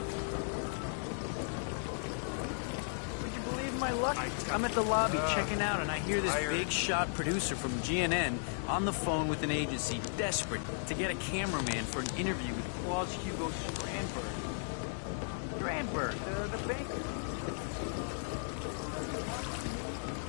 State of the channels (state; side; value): silent; right; 54 dB below the other